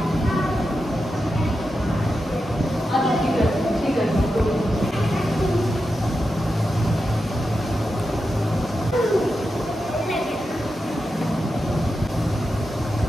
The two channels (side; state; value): both; normal; correlation 0.89